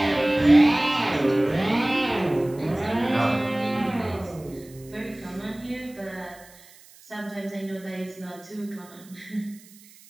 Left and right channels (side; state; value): right; noise; hiss, 24 dB below the sound